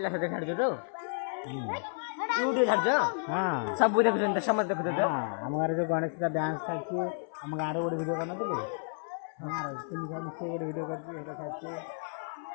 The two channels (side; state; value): right; silent; 57 dB below the other